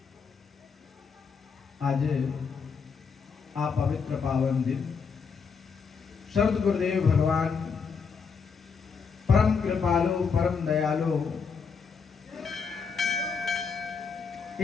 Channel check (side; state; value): right; quieter; 5.6 dB